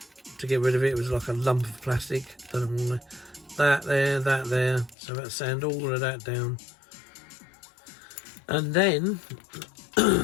to get rid of it. It was like a lump of plastic. Don't know why. That there. So I had to sand all of that down. And then,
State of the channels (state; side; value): drops out; right; at 5.0 s